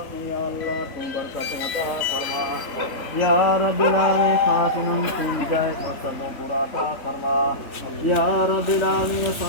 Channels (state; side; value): late; right; 3.6 ms